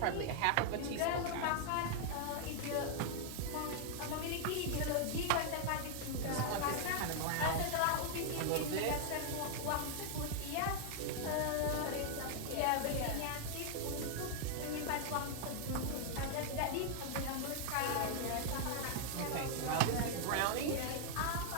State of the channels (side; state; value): both; different; correlation 0.00